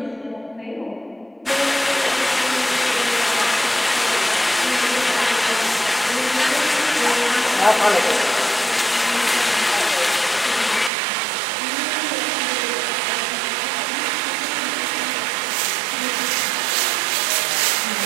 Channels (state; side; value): drops out; left; at 10.9 s